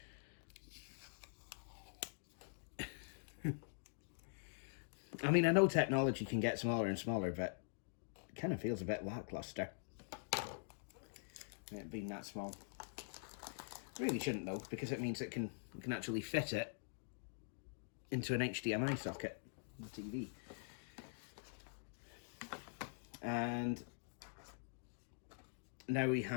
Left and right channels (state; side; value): silent; right; digital silence